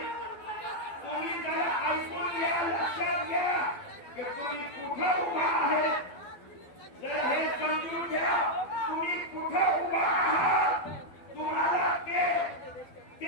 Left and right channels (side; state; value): right; late; 12 ms